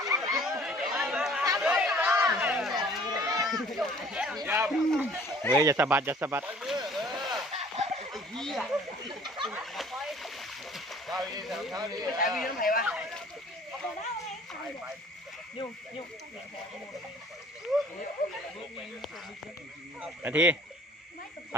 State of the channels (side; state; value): both; normal; correlation 0.52